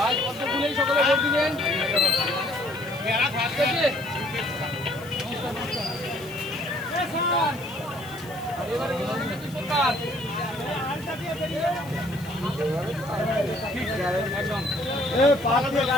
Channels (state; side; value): noise; left; hiss, 20 dB below the sound